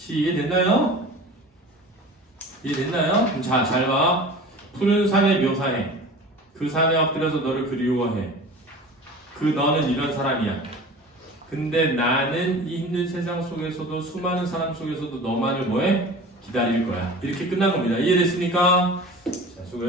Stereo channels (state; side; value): normal; both; correlation 0.38